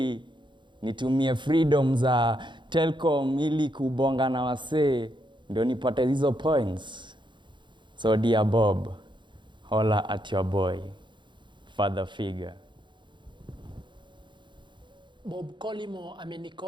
nitumie freedom za Telcom ili kubonga na wasee ndio nipate hizo points. So dear Bob, holla at your boy, father figure. Bob Colimo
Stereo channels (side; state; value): left; late; 0.23 ms